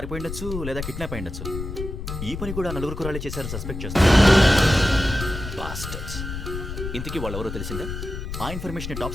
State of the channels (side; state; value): left; noise; rumble, 7 dB below the sound